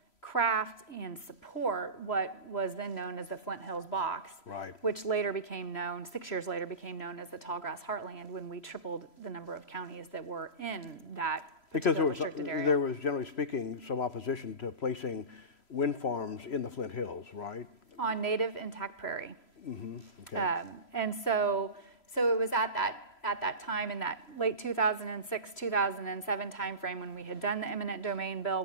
craft and support what was then known as the Flint Hills Box, right, which later became known, 6 years later became known as the Tallgrass Heartland, when we tripled the number of counties that were in that particular restricted area. There was, generally speaking, some opposition to placing wind farms in the Flint Hills, right? On native intact prairie. Okay. And so it was at that time, in that late 2006, 2007 timeframe, when we had done the eminent domain bill,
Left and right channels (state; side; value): late; right; 3.0 ms